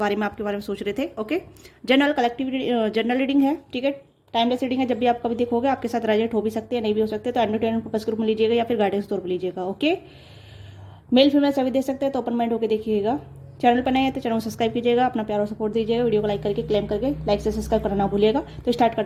में आपके बारे में सोच रहे थे। Okay, general collective general reading है। ठीक है, टाइमलेस रीडिंग है। जब भी आप कभी देखोगे आपके साथ रेजोनेट हो भी सकते हैं, नहीं भी हो सकते, तो एंटरटेनमेंट पर्पस ग्रुप में लीजिएगा या फिर गाइडेंस तौर पर लीजिएगा। ओके, मेल फीमेल सभी दे सकते हैं, तो ओपन माइंड होकर देखिएगा। चैनल पर नए हैं तो चैनल को सब्सक्राइब कीजिएगा, अपना प्यार और सपोर्ट दीजिएगा, वीडियो को लाइक करके क्लेम करके लाइक से सब्सक्राइब करना ना भूलिएगा। तो स्टार्ट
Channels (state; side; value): identical; both; correlation 1.00